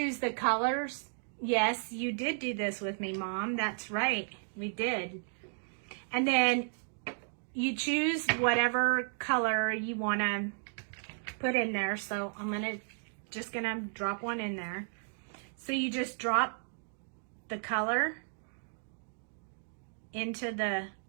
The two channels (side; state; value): left; silent; digital silence